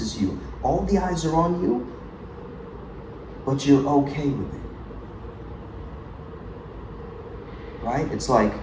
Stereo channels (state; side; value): identical; both; correlation 1.00